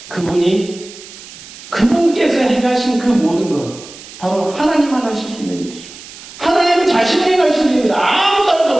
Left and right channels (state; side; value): noise; right; hiss, 17 dB below the sound